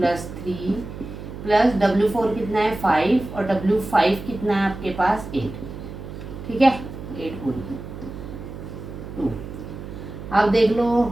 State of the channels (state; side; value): noise; right; hum, 11 dB below the sound